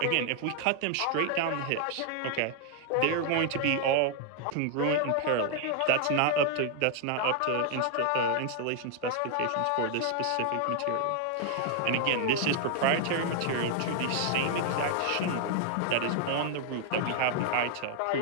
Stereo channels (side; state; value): both; different; correlation 0.00